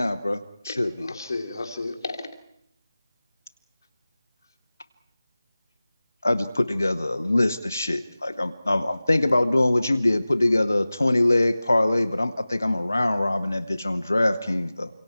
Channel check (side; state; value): both; inverted; correlation -0.97